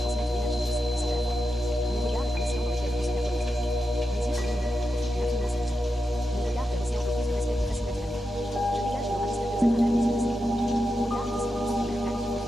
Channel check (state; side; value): normal; both; correlation 0.88